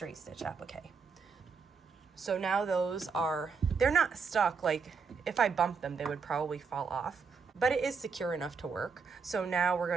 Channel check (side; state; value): left; quieter; 5.3 dB